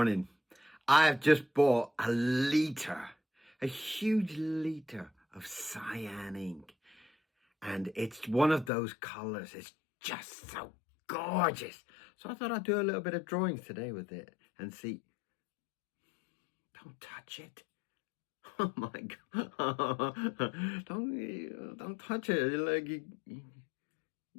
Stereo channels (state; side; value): drops out; right; at 8.7 s